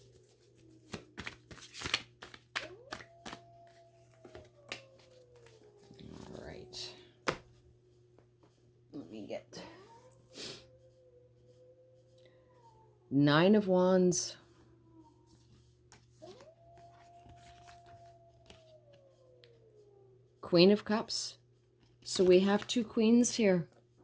All right. Let me get 9 of Wands. Queen of Cups. So we have 2 queens here.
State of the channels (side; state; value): both; identical; correlation 1.00